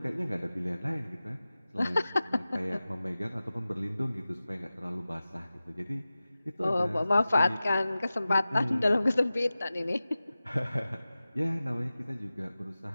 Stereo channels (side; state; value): both; inverted; correlation -0.96